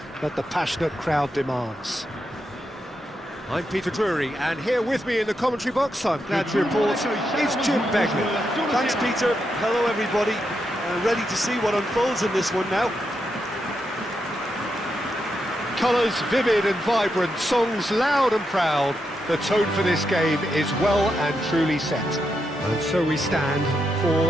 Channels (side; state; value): both; normal; correlation 0.84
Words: that the passionate crowd demands. I'm Peter Drury, and here with me in the commentary box, I'm glad to report, is Jim Begley. Thanks, Peter. Hello, everybody. Ready to see what unfolds in this one now. Colours vivid and vibrant, songs loud and proud. The tone for this game is well and truly set. And so we stand